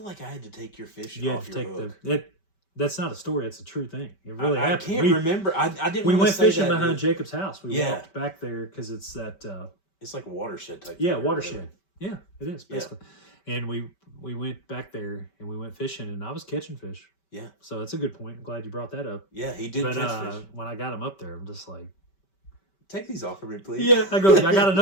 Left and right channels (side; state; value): right; late; 5.2 ms